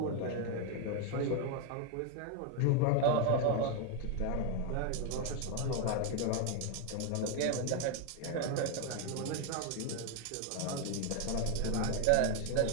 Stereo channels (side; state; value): both; different; correlation 0.01